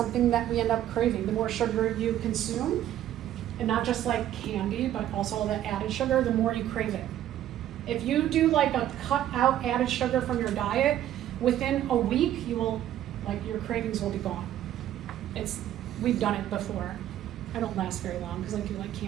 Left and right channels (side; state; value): left; quieter; 12.1 dB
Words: that we end up craving. The more sugar you consume, and not just candy, but also the added sugar, the more you crave it. If you do a cut out added sugar from your diet, within a week, you will, your cravings will be gone. We've done it before. I don't last very long because I do like